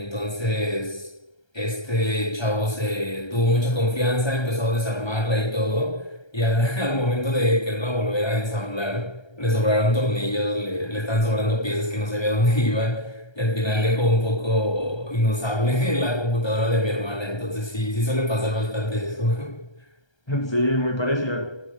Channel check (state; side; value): late; right; 1.3 ms